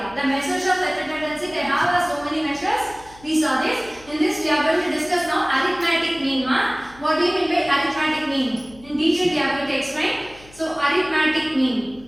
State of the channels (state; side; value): noise; left; hum, 23 dB below the sound